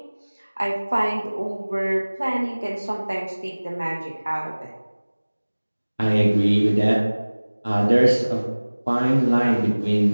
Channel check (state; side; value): inverted; both; correlation -1.00